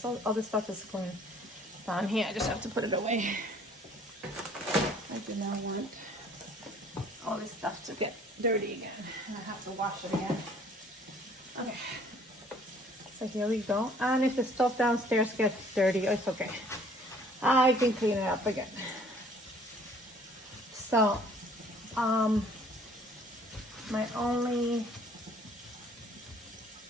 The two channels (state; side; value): normal; both; correlation 0.56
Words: other stuff is going down here. I just have to put it away. I do not want all this stuff to get dirty again, and I have to wash it again. Okay, so here we go. And if the stuff downstairs gets dirty, it's okay. I can clean it up again. So, my only,